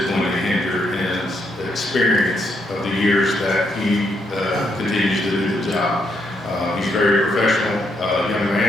going to hinder his experience of the years that he continues to do the job. He's a very professional young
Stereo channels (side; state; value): both; normal; correlation 0.77